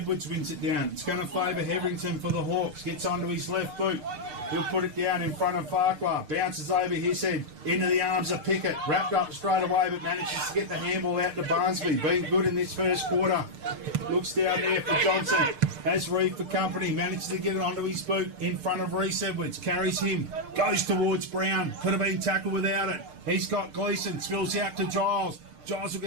wins it down. It's going to favour Hetherington for the Hawks. Gets onto his left boot. He'll put it down in front of Farquhar. Bounces over his head. Into the arms of Pickett. Wrapped up straight away, but manages to get the handball out to Barnsby. Been good in this first quarter. Looks down there for Johnson. Has Reeve for company. Manages to get it onto his boot in front of Reese Edwards. Carries him. Goes towards Brown. Could have been tackled without it. He's got Gleeson. Spills out to Giles. Giles will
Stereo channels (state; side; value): late; left; 6.6 ms